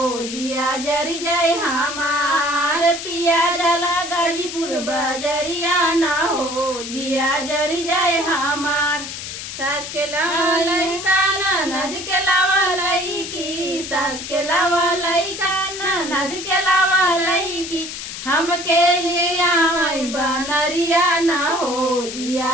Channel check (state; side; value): noise; left; hiss, 8 dB below the sound